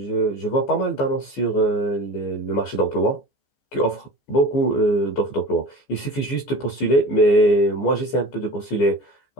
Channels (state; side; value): late; right; 14 ms